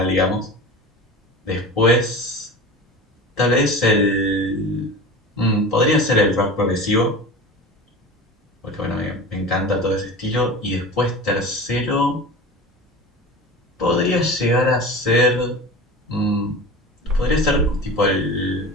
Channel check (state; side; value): normal; both; correlation 0.33